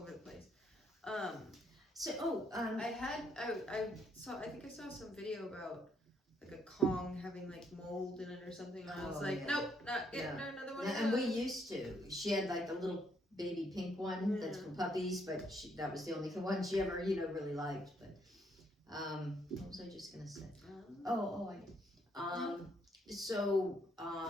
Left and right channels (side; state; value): both; normal; correlation 0.71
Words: the place. So I think I saw some video about like a Kong having like mold in it or something. And I was like, yeah. nope, not getting her another one. And we used to. She had like a little baby pink one that's for puppies, but that was the only one she ever, really liked. But what was I just gonna say? So